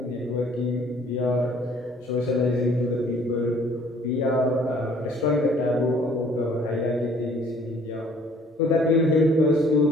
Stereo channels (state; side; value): normal; both; correlation 0.57